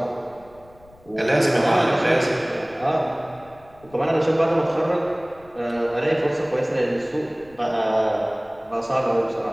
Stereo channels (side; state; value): left; noise; rumble, 27 dB below the sound